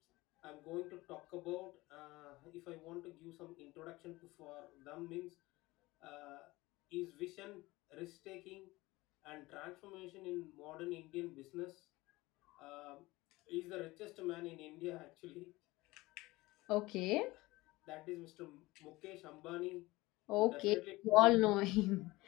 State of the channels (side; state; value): right; quieter; 20.3 dB